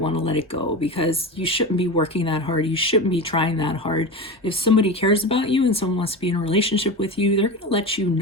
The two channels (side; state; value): both; normal; correlation 0.25